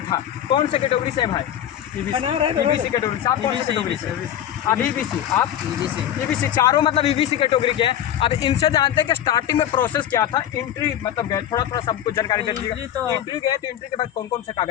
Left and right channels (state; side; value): quieter; right; 11.0 dB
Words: कौन से कैटेगरी से है भाई? ईबीसी कैटेगरी से। आप कौन सी कैटेगरी से? अब ईबीसी। आप ईबीसी। चारों मतलब ईबीसी कैटेगरी के हैं। अब इनसे जानते हैं कि स्टार्टिंग में प्रोसेस क्या था। एंट्री मतलब गए, थोड़ा सबको जानकारी दे दीजिएगा। एंट्री गए तो एंट्री के बाद कौन कौन से